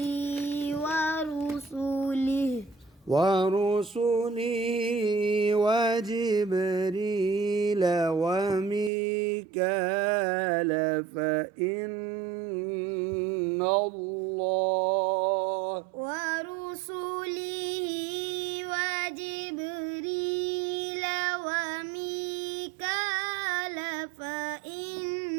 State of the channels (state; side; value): drops out; left; at 8.9 s